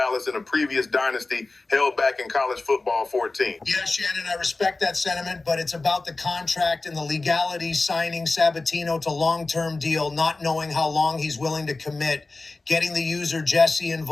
in a previous dynasty held back in college football 14. Yeah, Shannon, I respect that sentiment, but it's about the contract and the legality signing Sabatino to long-term deal, not knowing how long he's willing to commit, getting the user Jesse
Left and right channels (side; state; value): right; quieter; 3.4 dB